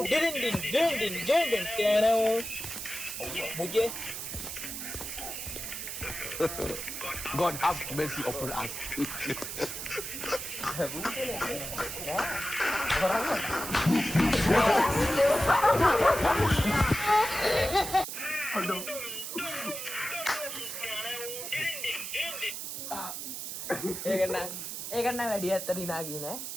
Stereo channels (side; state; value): right; noise; hiss, 6 dB below the sound